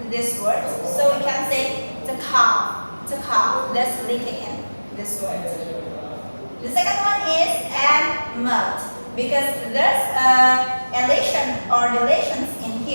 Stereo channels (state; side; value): inverted; both; correlation -1.00